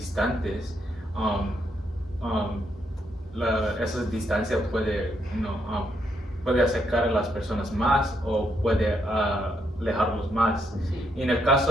esa distancia puede acercar a las personas más o puede alejarlos más. Sí. Y en el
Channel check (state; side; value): normal; both; correlation 0.77